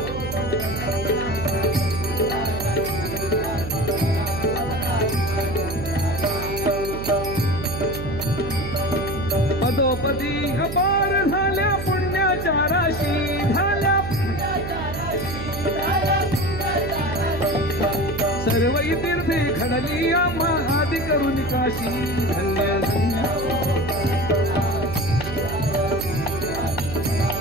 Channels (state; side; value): noise; right; hum, 7 dB below the sound